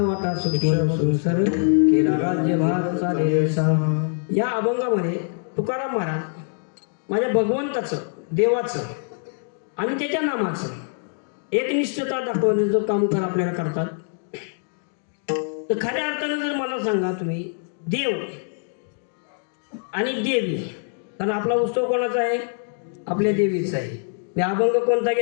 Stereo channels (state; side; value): silent; right; 63 dB below the other